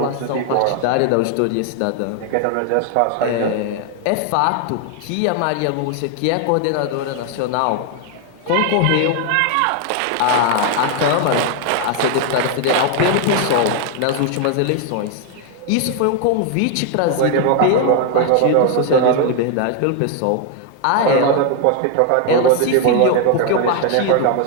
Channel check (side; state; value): both; different; correlation 0.01